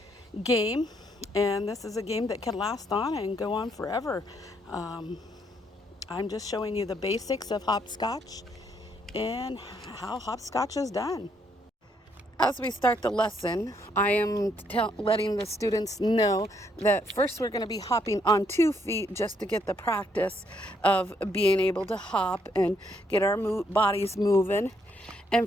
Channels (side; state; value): both; normal; correlation 0.73